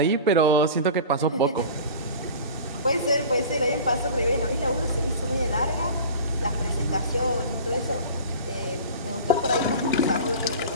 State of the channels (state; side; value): inverted; both; correlation -0.37